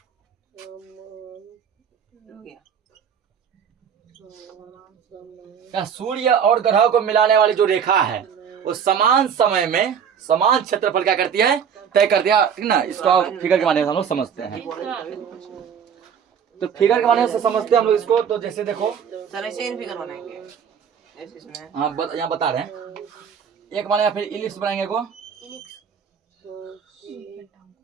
सूर्य और ग्रह को मिलाने वाली जो रेखा है वो समान समय में समान क्षेत्रफल क्या करती है, तय करती है, ठीक ना। इसको आप फिगर के माध्यम से हम लोग समझते हैं, तो फिगर के माध्यम से समझते हैं हम लोग इसको। तो जैसे देखो सर, ऐसे फिगर बनाएंगे, हाँ यहाँ बता रहे हैं, एक माने फिर इलिप्स बनाएंगे को,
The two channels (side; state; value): left; quieter; 7.6 dB